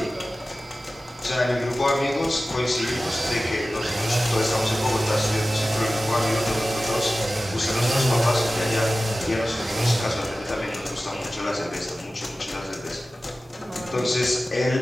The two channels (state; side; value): normal; both; correlation 0.96